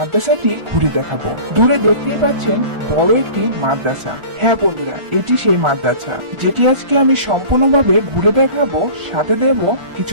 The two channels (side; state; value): left; late; 1.4 ms